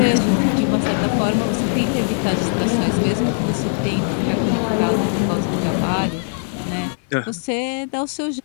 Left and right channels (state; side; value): silent; right; digital silence